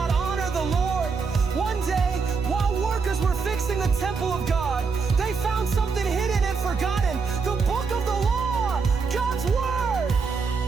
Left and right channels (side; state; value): left; quieter; 5.0 dB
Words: honor the Lord. One day, while workers were fixing the temple of God, they found something hidden and forgotten: the book of the law, God's word.